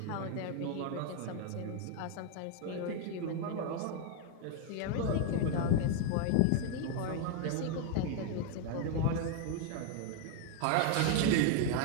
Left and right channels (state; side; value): different; both; correlation 0.00